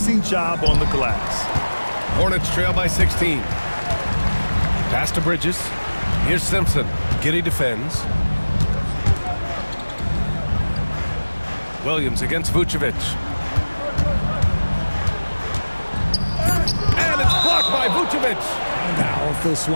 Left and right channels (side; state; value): both; inverted; correlation -1.00